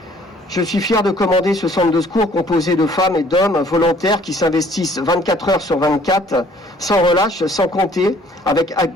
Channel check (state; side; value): normal; both; correlation 0.58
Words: Je suis fier de commander ce centre de secours composé de femmes et d'hommes volontaires qui s'investissent 24 heures sur 24, sans relâche, sans compter, avec